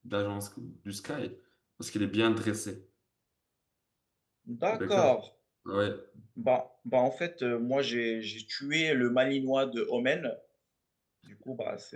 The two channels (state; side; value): identical; both; correlation 1.00